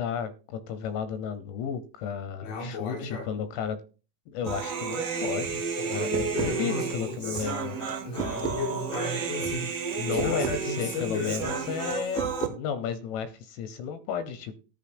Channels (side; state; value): right; late; 18 ms